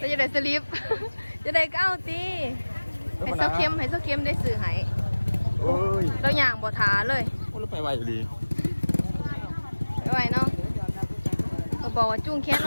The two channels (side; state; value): both; inverted; correlation -1.00